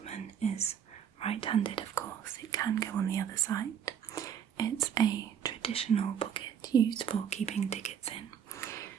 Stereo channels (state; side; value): quieter; left; 8.6 dB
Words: is right-handed. Of course, it can go on the other side. It's a traditional pocket used for keeping tickets in,